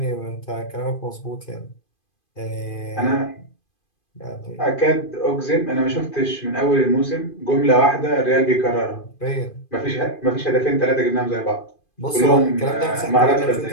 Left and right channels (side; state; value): right; late; 2.5 ms